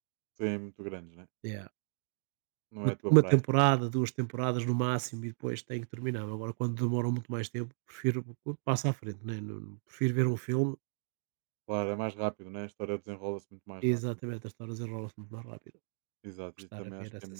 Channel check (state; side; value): silent; left; digital silence